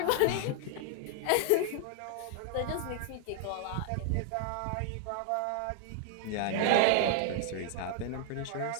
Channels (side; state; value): both; different; correlation 0.00